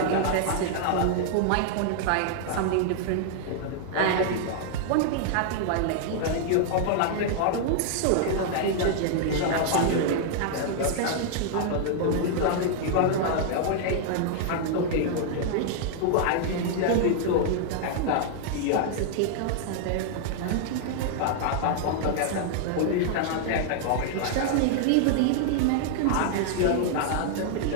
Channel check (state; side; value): different; both; correlation -0.01